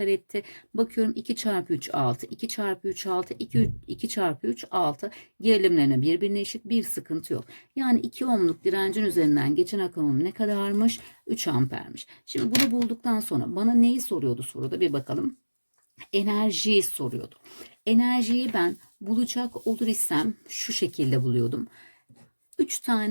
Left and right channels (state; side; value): inverted; both; correlation -1.00